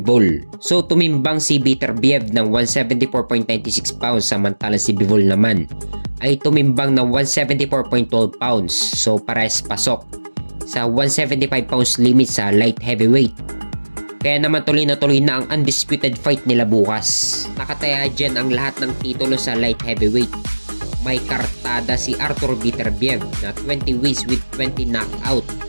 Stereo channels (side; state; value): both; inverted; correlation -1.00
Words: So tumimbang si Beterbiev ng 174.96 pounds samantalang si Bivol naman ay tumimbang ng 174.12 pounds. So parehas pasok sa 175 pounds limit sa light heavyweight. Kaya naman tuloy na ang undisputed fight nila bukas. Nakataya dyan ang lahat ng titulo sa light heavyweight. May kartada si Artur Beterbiev na 20 wins with 20 knockout